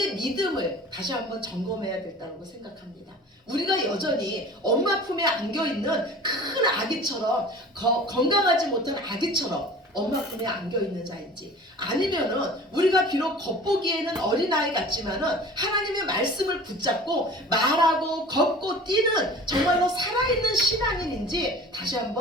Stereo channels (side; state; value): both; normal; correlation 0.42